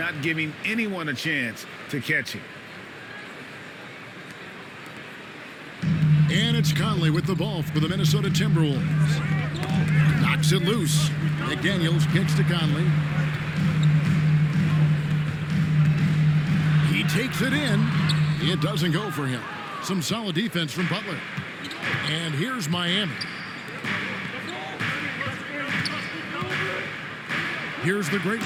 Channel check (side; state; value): both; identical; correlation 1.00